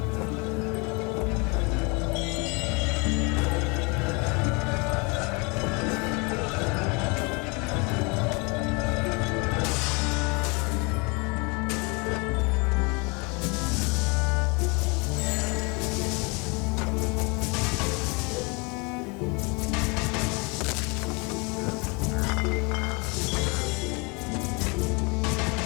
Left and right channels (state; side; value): quieter; right; 30.0 dB